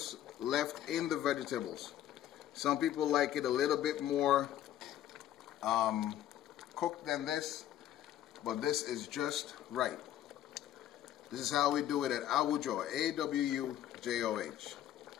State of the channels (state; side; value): quieter; right; 12.0 dB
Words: left in the vegetables. Some people like it a little bit more cooked than this. but this is just right. This is how we do it at Awujoh, A-W-U-J-O-H.